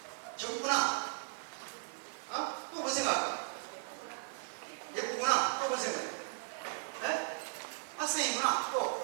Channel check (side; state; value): left; silent; 53 dB below the other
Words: 젊구나. 또 뭐 생각할까? 예쁘구나. 또 뭐 생각해? 네? 학생이구나.